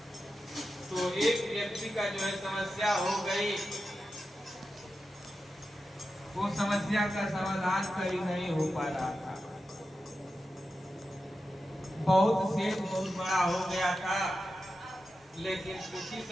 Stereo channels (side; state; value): both; normal; correlation 0.91